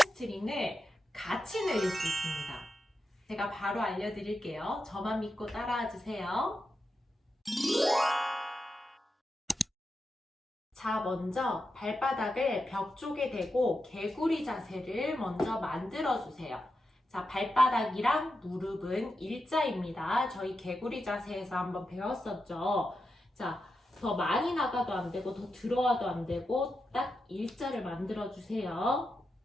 같이 늘릴 수 있습니다. 제가 바로 알려드릴게요. 저만 믿고 따라와 주세요. 자, 먼저 발바닥을 벽 쪽에 대고 개구리 자세를 먼저 만들어 주세요. 자, 발바닥이랑 무릎은 일자입니다. 저희 개구리 자세에서 한번 배웠었죠. 자, 더 많이 나가도 안 되고 더 들어와도 안 되고 딱 일자를 만들어 주세요.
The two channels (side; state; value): both; normal; correlation 0.88